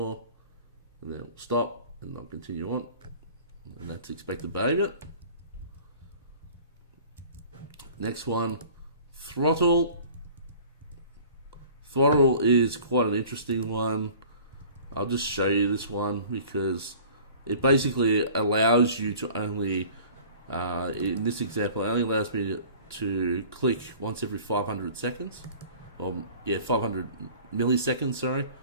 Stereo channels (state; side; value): inverted; both; correlation -0.47